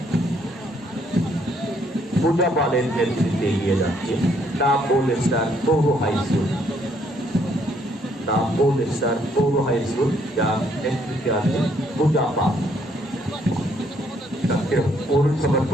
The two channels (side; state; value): both; normal; correlation 0.68